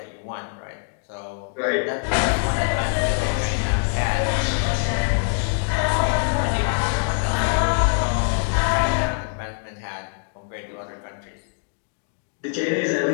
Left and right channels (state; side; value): silent; right; 59 dB below the other